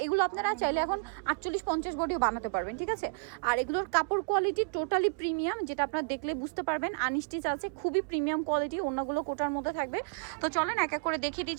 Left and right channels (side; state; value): left; quieter; 35.1 dB